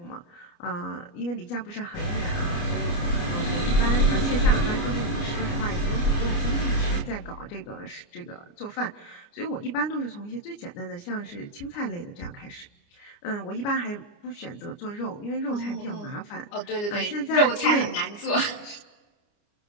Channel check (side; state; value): right; late; 29 ms